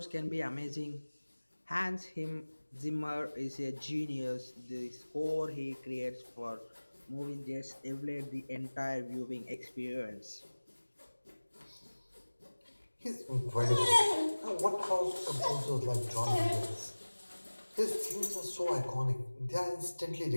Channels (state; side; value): inverted; both; correlation -1.00